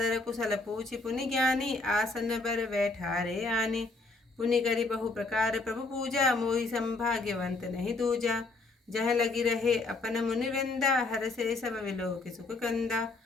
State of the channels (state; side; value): quieter; right; 3.4 dB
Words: कुशल पूछि पुनि ज्ञानी, आसन बर बैठारे आने। पुनि करि बहु प्रकार प्रभु पूजा, मोहि संभाग्यवंत नहीं दूजा। जह लगी रहे अपन मुनि वृंदा, हर से सब विलोक सुख कंदा।